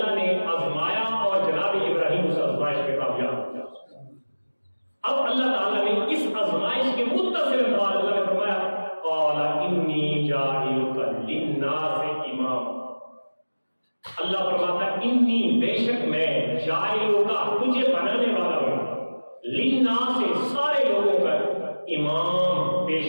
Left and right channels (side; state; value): both; inverted; correlation -1.00